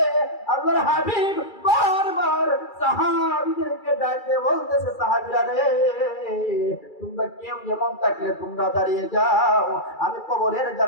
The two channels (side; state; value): right; late; 2.3 ms